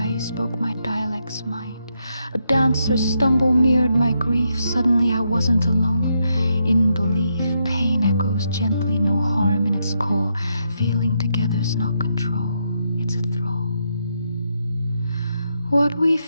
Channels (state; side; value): inverted; both; correlation -0.80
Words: spoke my dialect's mind. A dancer's stumble mirrored my grief. Suddenly I wasn't alone. In belief, pain echoes gently, no harm in its core. Feeling together's not control, it's a thrall. What we